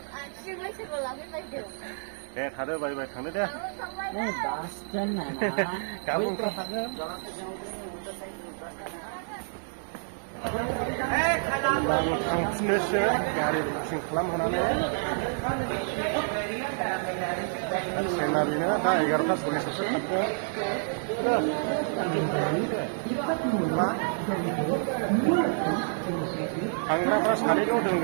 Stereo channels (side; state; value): left; silent; digital silence